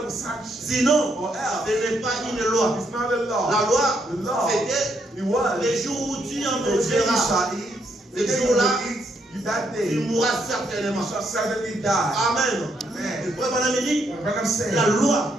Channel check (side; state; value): both; normal; correlation 0.75